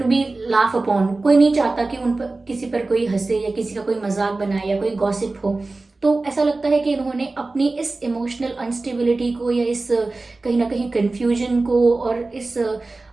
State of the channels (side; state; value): left; quieter; 3.3 dB